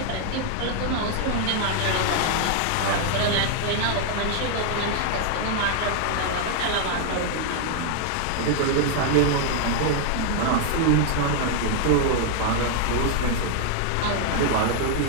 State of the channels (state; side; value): different; both; correlation 0.00